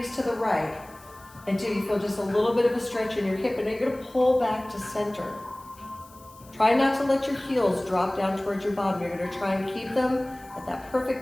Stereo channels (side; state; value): left; noise; hiss, 25 dB below the sound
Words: to the right until you feel just a little bit of a stretch in your hip, and then you're going to pull back to center. Try not to let your heels drop down towards your bottom. You're going to try and keep them at that